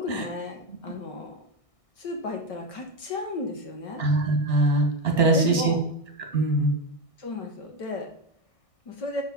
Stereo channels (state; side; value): late; right; 1.6 ms